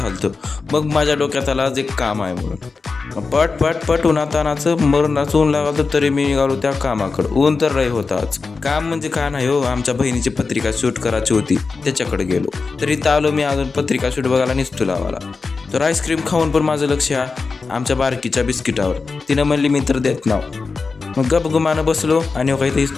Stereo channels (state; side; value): quieter; right; 4.4 dB